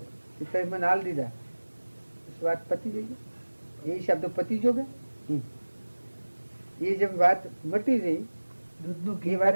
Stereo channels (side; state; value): both; inverted; correlation -1.00